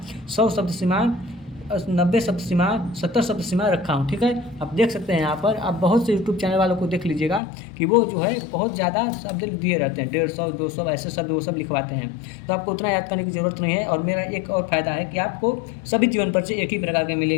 100 शब्द सीमा, 90 शब्द सीमा, 70 शब्द सीमा रखा हूँ। ठीक है, आप देख सकते हैं यहाँ पर, आप बहुत से यूट्यूब चैनल वालों को देख लीजिएगा कि वो जो है बहुत ज़्यादा शब्द दिए रहते हैं, 150 200 ऐसे शब्द वो सब लिखवाते हैं। तो आपको उतना याद करने की ज़रूरत नहीं है। और मेरा एक और फ़ायदा है कि आपको सभी जीवन परिचय एक ही प्रकार के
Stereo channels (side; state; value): right; drops out; at 7.4 s